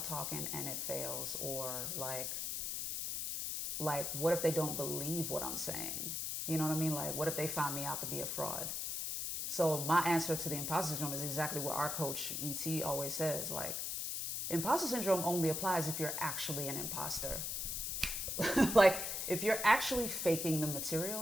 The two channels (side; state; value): left; noise; hiss, 2 dB below the sound